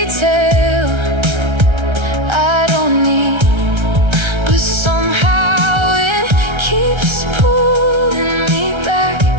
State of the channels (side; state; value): left; late; 1.3 ms